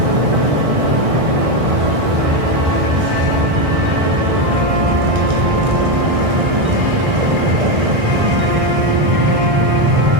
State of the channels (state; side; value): late; left; 1.6 ms